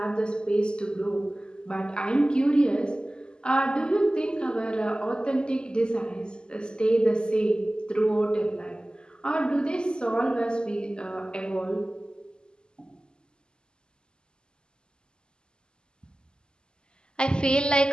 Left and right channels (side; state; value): right; late; 0.047 ms